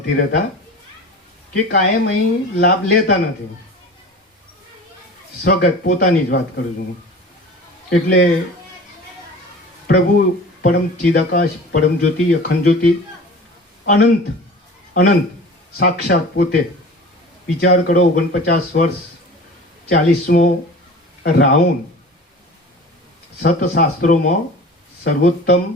રહેતા કે કાયમ અહીં લાભ લેતા નથી. સ્વગત પોતાની જ વાત કરું છું. એટલે પ્રભુ પરમ ચિદાકાશ, પરમ જ્યોતિ, અખંડ જ્યોતિ, અનંત અનંત સાક્ષાત પોતે. વિચાર કરો, 49 વર્ષ, 40મો રાઉન્ડ. સતશાસ્ત્રોમાં સર્વોત્તમ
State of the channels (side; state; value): both; normal; correlation 0.39